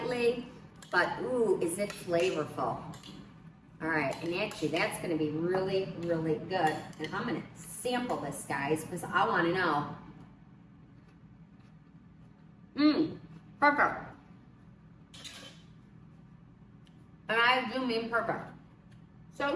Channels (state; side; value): identical; both; correlation 1.00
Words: but ooh, is it flavorful. All right, and actually that's gonna be really, really good. And I'm gonna sample this, guys, because I wanna know. Perfect. And I do mean perfect. So,